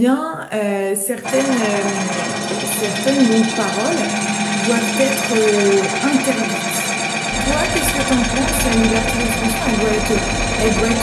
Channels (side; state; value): both; identical; correlation 1.00